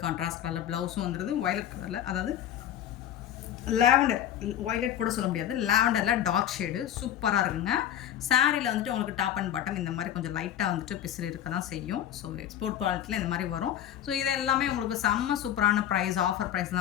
கான்ட்ராஸ்ட் கலரில் ப்ளவுஸும் வந்துடுது. வயலட் கலரில், அதாவது லாவெண்டர், வயலட் கூட சொல்ல முடியாது, லாவெண்டரில் டார்க் ஷேடு சூப்பராக இருக்குங்க. சாரியில் வந்துட்டு உங்களுக்கு டாப் அண்ட் பாட்டம் இந்த மாதிரி கொஞ்சம் லைட்டாக வந்துட்டு பிசிறு இருக்க தான் செய்யும். ஸோ எக்ஸ்போர்ட் குவாலிட்டியில் இந்த மாதிரி வரும். ஸோ இது எல்லாமே உங்களுக்கு செம்ம சூப்பரான ப்ரைஸ், ஆஃபர் ப்ரைஸ்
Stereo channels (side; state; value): right; quieter; 10.9 dB